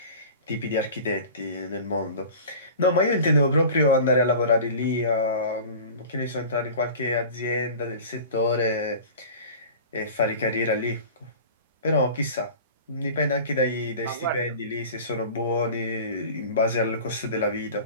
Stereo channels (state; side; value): inverted; both; correlation -0.38